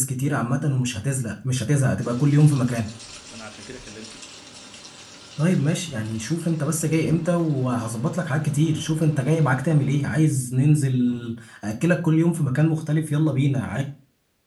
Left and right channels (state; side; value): identical; both; correlation 1.00